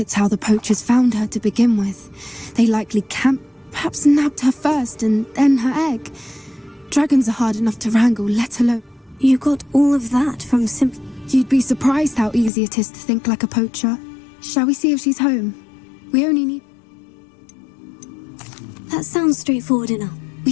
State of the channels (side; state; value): right; drops out; at 12.5 s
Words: how the poachers found her to begin with. They likely camped, perhaps nabbed her first and then her egg. Dragons are hard enough to wrangle, let alone... You got all of that from You'd be surprised how easy it is to think like a poacher. Shall we see if she's home? We only need... That sounds straightforward enough. We